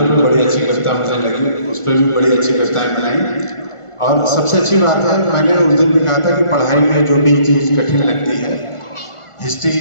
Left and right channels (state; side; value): late; right; 1.4 ms